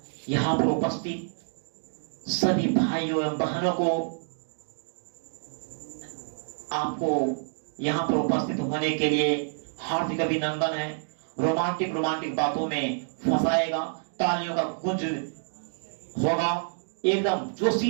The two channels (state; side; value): silent; left; digital silence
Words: यहाँ पर उपस्थित सभी भाइयों एवं बहनों को आपको यहाँ पर उपस्थित होने के लिए हार्दिक अभिनंदन है। रोमांटिक रोमांटिक बातों में फंसाएगा, तालियों का गूंज होगा, एकदम